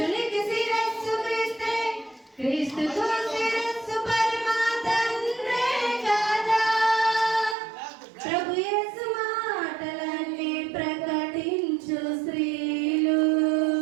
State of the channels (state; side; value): drops out; left; at 7.6 s